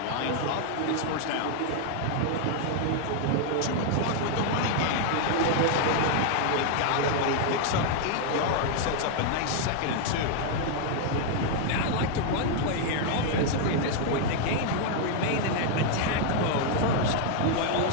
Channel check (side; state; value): both; different; correlation 0.00